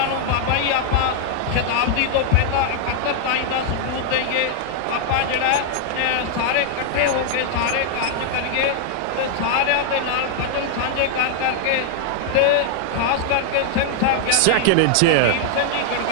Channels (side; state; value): both; different; correlation 0.00